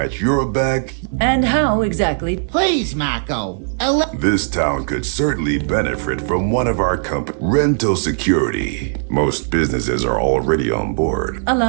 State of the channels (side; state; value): left; silent; 67 dB below the other